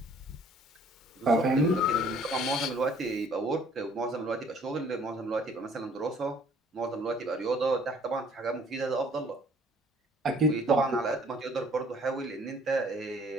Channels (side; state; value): both; normal; correlation 0.57